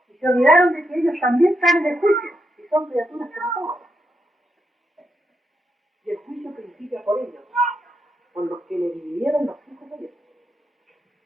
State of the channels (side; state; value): both; normal; correlation 0.82